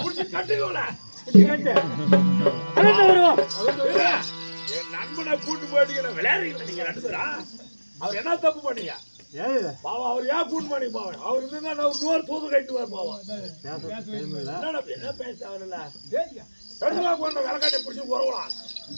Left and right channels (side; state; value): both; inverted; correlation -1.00